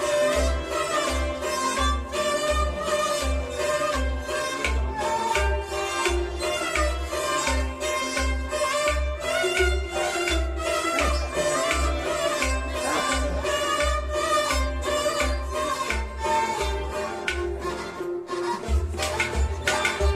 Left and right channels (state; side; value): identical; both; correlation 1.00